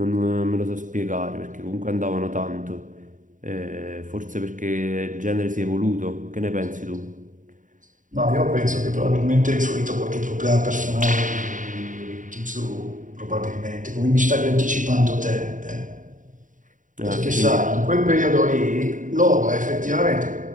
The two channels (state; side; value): late; left; 0.38 ms